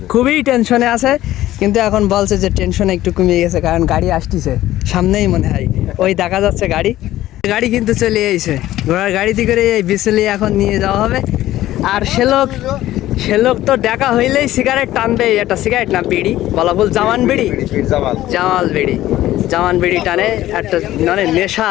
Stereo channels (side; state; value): right; quieter; 14.6 dB